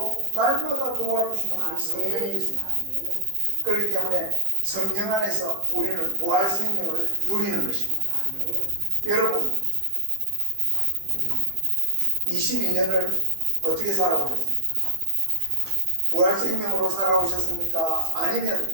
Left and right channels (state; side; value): late; left; 15 ms